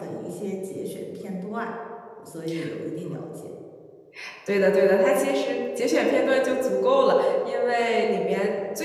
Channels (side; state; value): both; identical; correlation 1.00